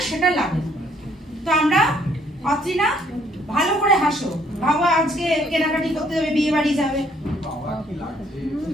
সেটা লাগে। তো আমরা অত্রিনা ভালো করে হাসো, ভাবো আজকে কেনাকাটি করতে হবে, বিয়ে বাড়ি যাবে।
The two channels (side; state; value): both; normal; correlation 0.65